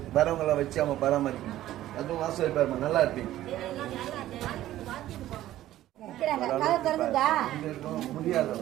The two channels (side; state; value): left; quieter; 14.0 dB